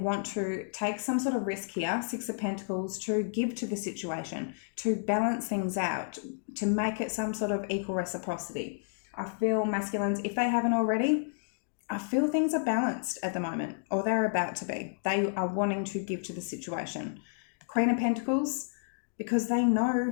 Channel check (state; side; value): silent; right; digital silence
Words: to take some sort of risk here, Six of Pentacles, to give to the situation, to balance things out, to make it some sort of equal reciprocity. I feel masculines, if they haven't already, I feel things are balanced at the moment, or they're about to be. They are wanting to give to the situation. Queen of Pentacles, because they know